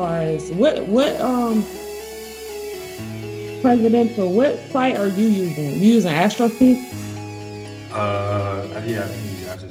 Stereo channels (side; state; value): both; identical; correlation 1.00